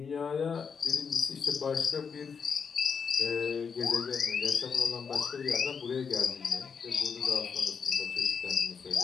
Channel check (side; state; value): right; quieter; 6.2 dB